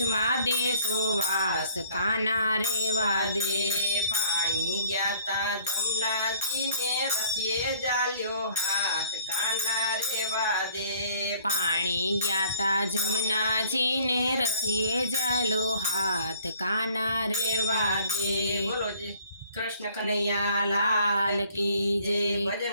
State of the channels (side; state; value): both; inverted; correlation -0.57